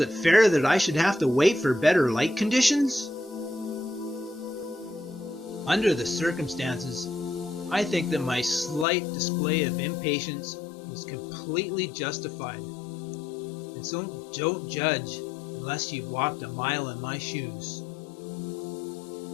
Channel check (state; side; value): drops out; right; at 8.8 s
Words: fair that I should have to wait for better light conditions? Under the circumstances, I think that my slight display of impatience was completely justified. And so don't judge unless you've walked a mile in my shoes.